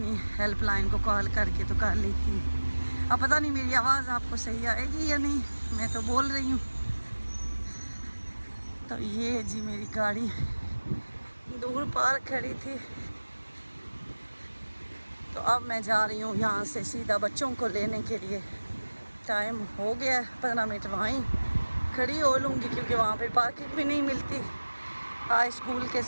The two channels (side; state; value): both; inverted; correlation -1.00